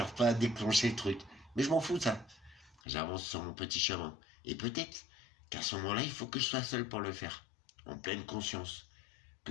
pas déclenché le truc. Mais je m'en fous, ça. J'avance sur mon petit chemin. Et peut-être qu'à ce moment-là, il faut que je sois seul pour le faire. En pleine conscience.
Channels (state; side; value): drops out; right; at 2.8 s